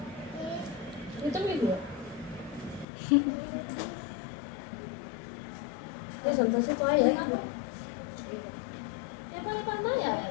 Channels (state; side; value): drops out; right; at 2.9 s